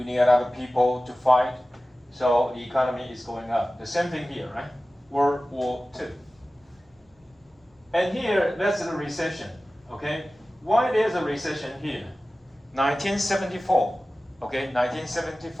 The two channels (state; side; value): normal; both; correlation 0.96